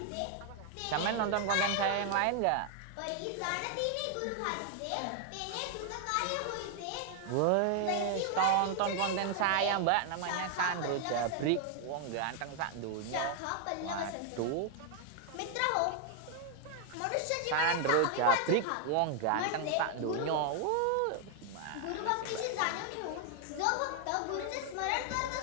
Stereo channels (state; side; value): different; both; correlation 0.00